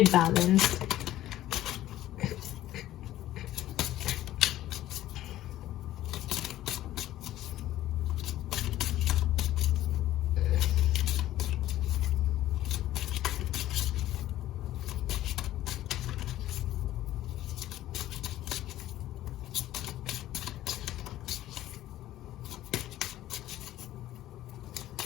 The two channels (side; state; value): right; quieter; 14.1 dB